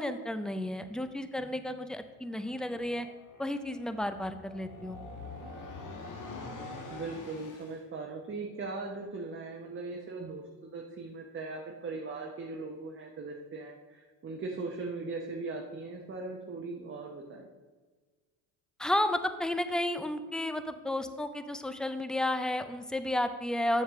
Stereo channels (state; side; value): normal; both; correlation 0.71